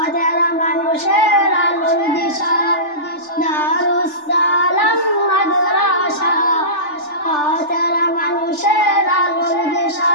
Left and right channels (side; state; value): right; late; 3.4 ms